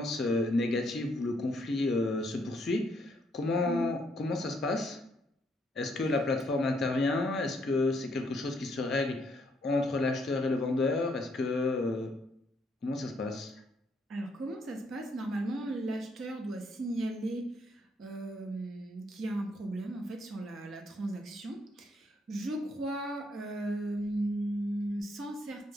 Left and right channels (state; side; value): normal; both; correlation 0.71